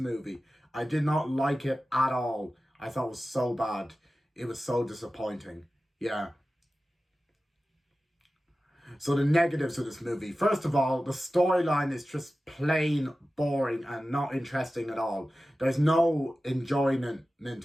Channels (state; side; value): normal; both; correlation 0.95